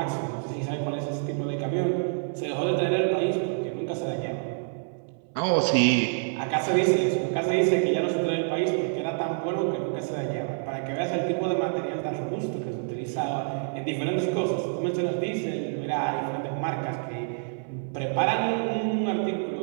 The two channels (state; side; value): silent; left; 60 dB below the other